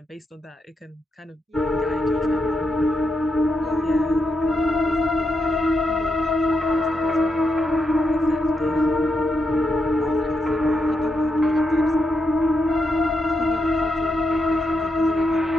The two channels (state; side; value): normal; both; correlation 0.83